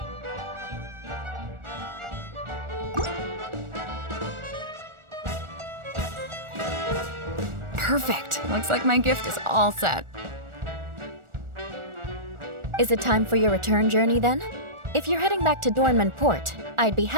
Perfect. Looks like my gift is all set. Is it time for your return journey then? If you're heading back to Dornman Port, I'd be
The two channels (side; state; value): left; late; 1.4 ms